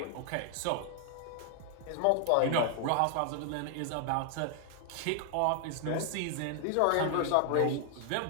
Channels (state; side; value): different; both; correlation 0.00